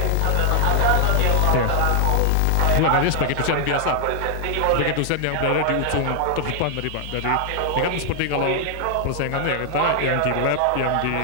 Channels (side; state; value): both; different; correlation 0.00